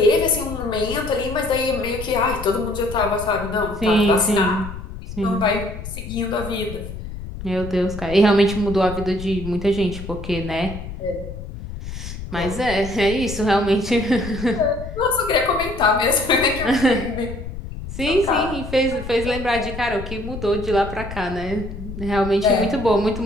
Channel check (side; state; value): left; noise; rumble, 10 dB below the sound